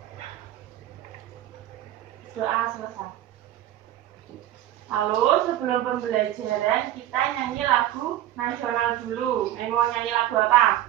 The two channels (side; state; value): left; quieter; 13.1 dB